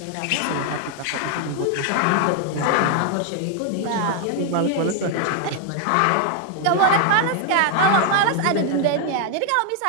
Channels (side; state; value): both; different; correlation 0.00